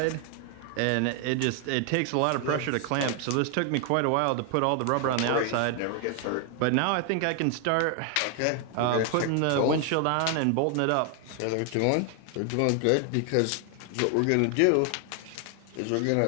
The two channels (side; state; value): both; different; correlation 0.00